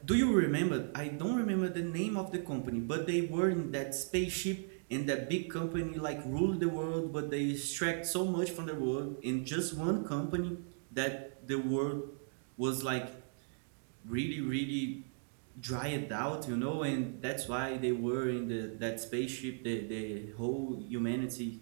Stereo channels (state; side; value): silent; left; digital silence